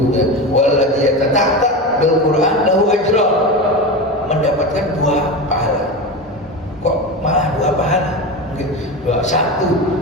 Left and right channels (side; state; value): both; normal; correlation 0.23